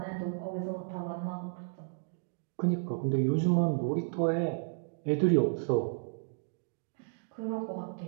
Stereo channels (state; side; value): silent; left; digital silence